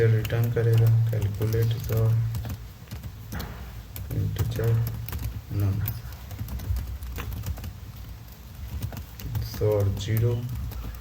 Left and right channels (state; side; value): identical; both; correlation 1.00